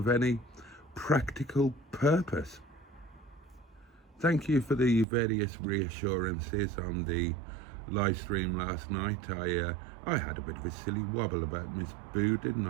any practical purpose. Thank you for the various reassurances on the live stream last night. I had a bit of a silly wobble about Miss Boo, didn't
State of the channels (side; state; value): left; drops out; at 5.1 s